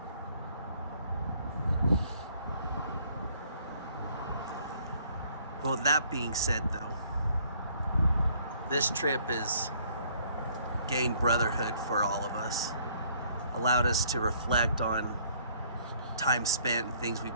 Well, with that being said, though, this trip has gained brotherhood for all of us, allowed us to reflect on time spent and things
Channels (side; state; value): both; inverted; correlation -0.62